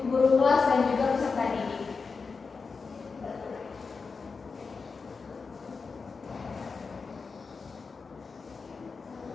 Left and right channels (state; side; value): quieter; right; 4.8 dB